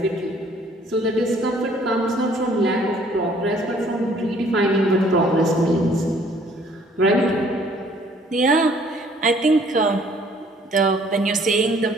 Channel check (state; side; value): normal; both; correlation 0.59